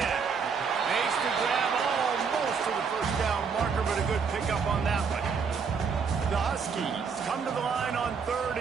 Makes the grab almost to the first down marker, but a good pickup on that one. The Huskies come to the line on third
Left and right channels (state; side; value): quieter; left; 5.8 dB